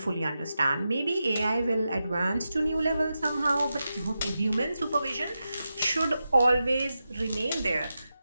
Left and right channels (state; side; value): inverted; both; correlation -0.90